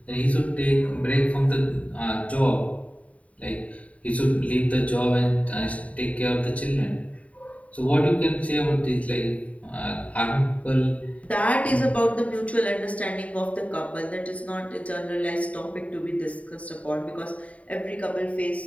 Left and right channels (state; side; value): late; right; 0.067 ms